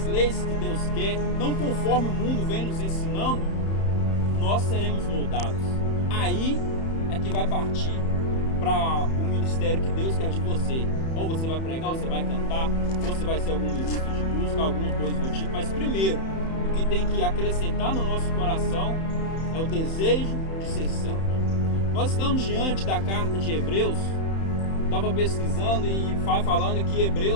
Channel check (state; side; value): late; right; 31 ms